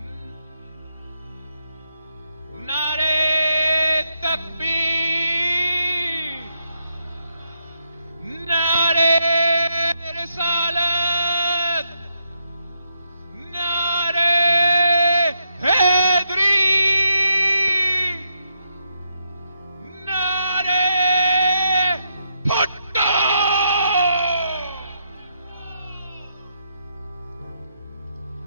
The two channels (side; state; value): both; inverted; correlation -0.80